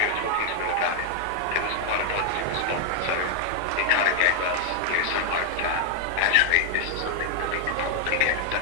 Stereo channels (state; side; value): different; both; correlation 0.00